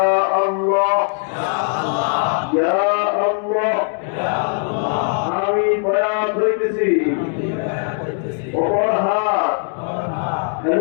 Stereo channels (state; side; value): silent; right; 60 dB below the other